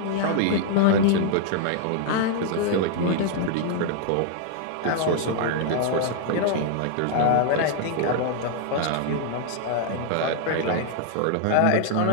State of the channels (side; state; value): both; different; correlation 0.00